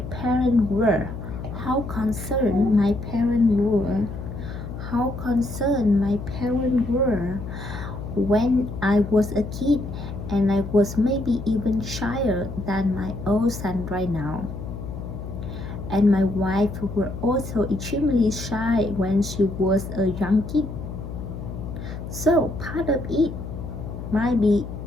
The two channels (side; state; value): left; noise; hum, 8 dB below the sound